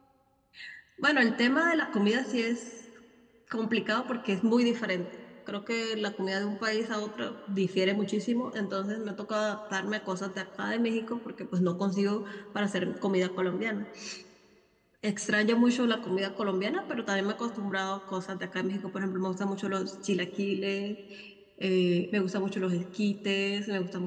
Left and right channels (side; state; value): both; identical; correlation 1.00